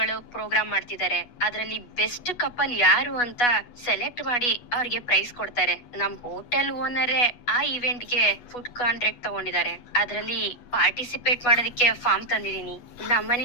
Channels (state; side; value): late; right; 8.2 ms